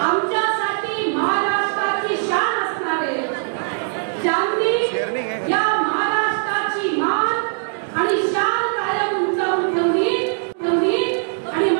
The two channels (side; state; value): left; silent; digital silence